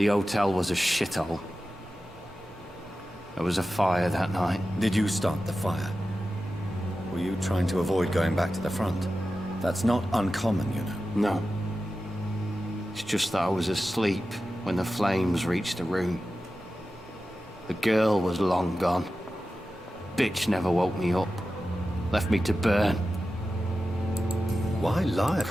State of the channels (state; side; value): normal; both; correlation 0.93